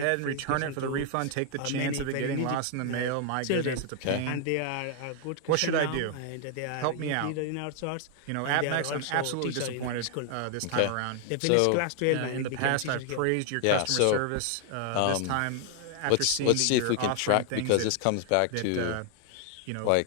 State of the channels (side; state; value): both; different; correlation 0.00